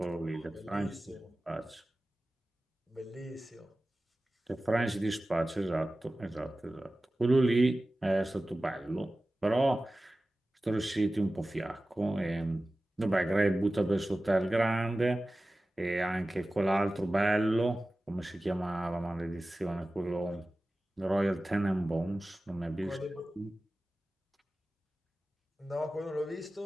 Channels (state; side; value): normal; both; correlation 0.96